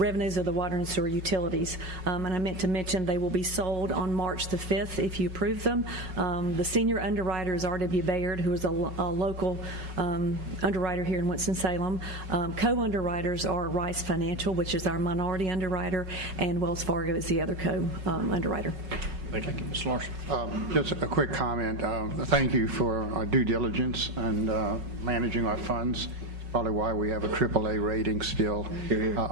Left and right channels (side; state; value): left; late; 5.4 ms